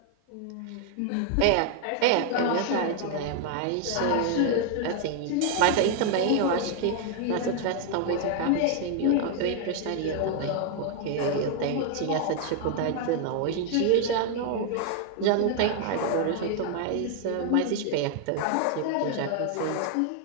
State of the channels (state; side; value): different; both; correlation 0.00